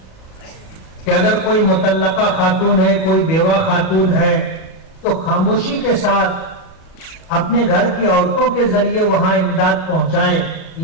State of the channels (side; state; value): right; late; 37 ms